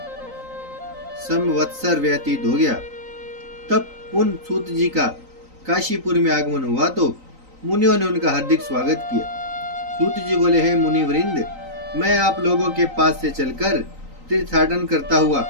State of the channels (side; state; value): left; late; 3.9 ms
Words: संवत्सर व्यतीत हो गया। तब पुन सूत जी का काशीपुर में आगमन हुआ तो मुनियों ने उनका हार्दिक स्वागत किया। सूत जी बोले, हे मुनिवृंद, मैं आप लोगों के पास से चलकर तीर्थाटन करता हुआ